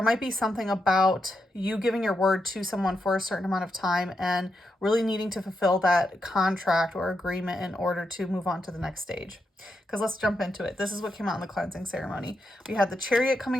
might be something about you giving your word to someone for a certain amount of time and really needing to fulfill that contract or agreement in order to move on to the next stage. Because let's jump into it. This is what came out in the cleansing ceremony. We had the Chariot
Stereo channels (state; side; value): normal; both; correlation 0.84